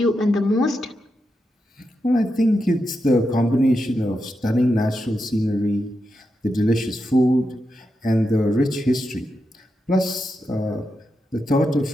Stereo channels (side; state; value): both; normal; correlation 0.87